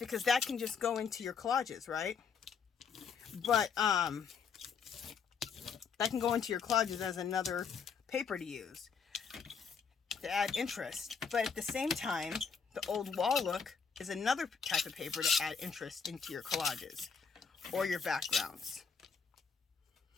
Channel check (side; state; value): right; quieter; 6.1 dB